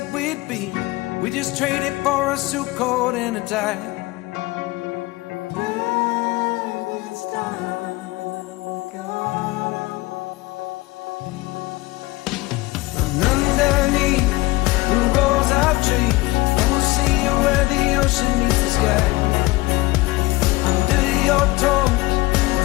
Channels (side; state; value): right; quieter; 21.1 dB